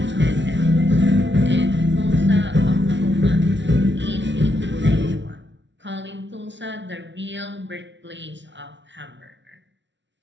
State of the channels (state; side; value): late; left; 0.53 ms